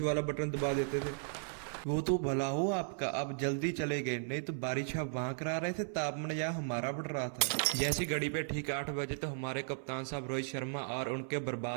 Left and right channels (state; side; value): silent; left; 54 dB below the other